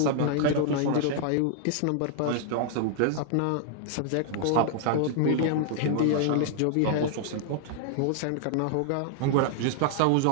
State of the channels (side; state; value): both; different; correlation 0.00